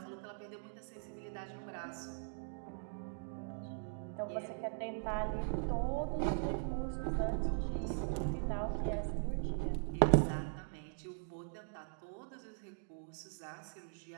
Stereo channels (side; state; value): left; silent; digital silence